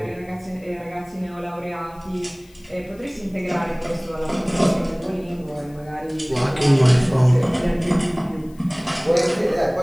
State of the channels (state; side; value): noise; left; hiss, 29 dB below the sound